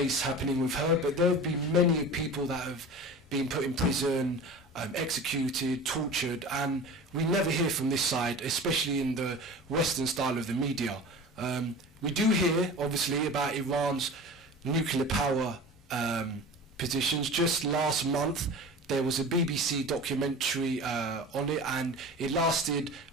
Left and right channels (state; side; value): normal; both; correlation 0.36